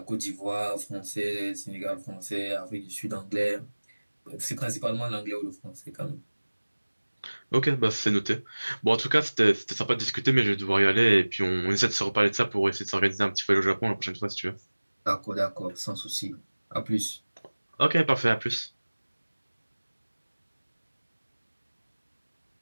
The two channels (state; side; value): inverted; both; correlation -1.00